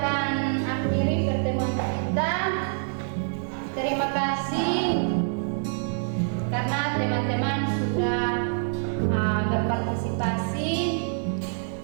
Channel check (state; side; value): silent; left; digital silence